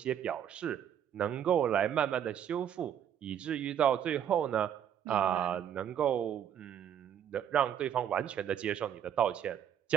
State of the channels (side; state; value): left; quieter; 9.4 dB